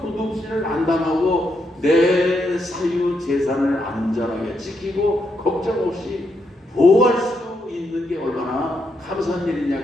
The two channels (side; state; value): both; normal; correlation 0.80